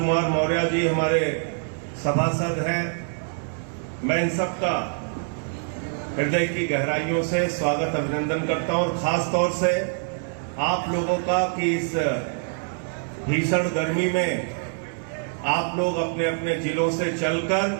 मौर्य जी हमारे सभासद हैं। मैं इन सबका हृदय की गहराइयों से स्वागत अभिनंदन करता हूं और खास तौर से आप लोगों का कि इस भीषण गर्मी में आप लोग अपने अपने जिलों से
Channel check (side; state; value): left; silent; digital silence